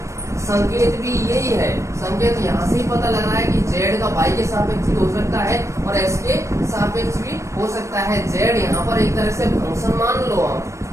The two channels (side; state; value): left; late; 0.15 ms